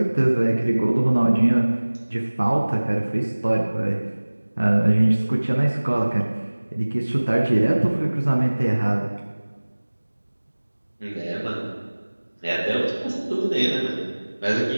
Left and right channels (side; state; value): both; inverted; correlation -1.00